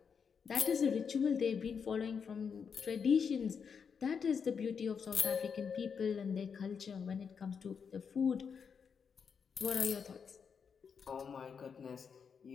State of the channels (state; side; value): quieter; right; 6.4 dB